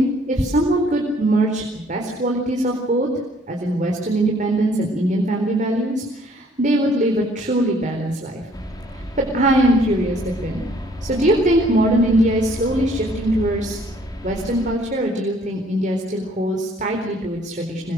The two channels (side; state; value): both; normal; correlation 0.60